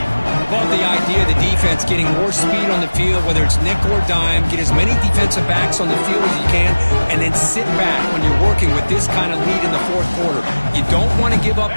Love the idea of the defense getting more speed on the field, whether it's nickel or dime. Get as many defensive backs on the field as you can, and then sit back when you're working with this kind of lead in the 4th quarter. You don't want to give up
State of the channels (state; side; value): inverted; both; correlation -1.00